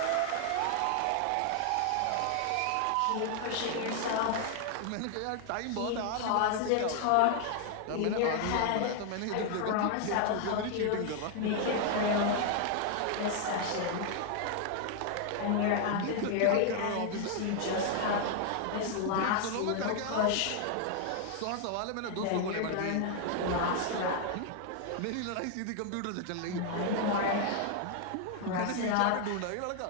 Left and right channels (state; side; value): different; both; correlation 0.00